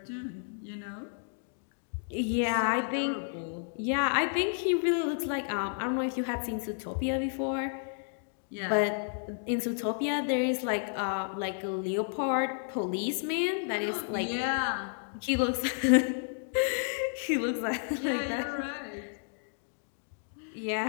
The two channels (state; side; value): silent; right; digital silence